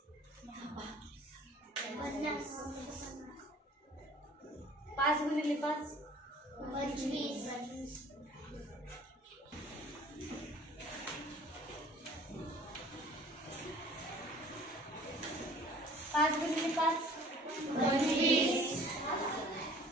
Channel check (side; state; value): both; normal; correlation 0.50